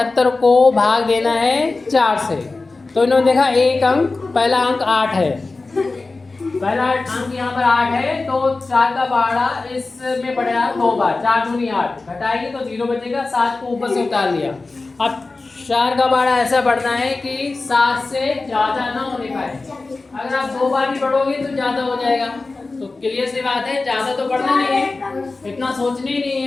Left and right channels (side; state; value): right; quieter; 3.6 dB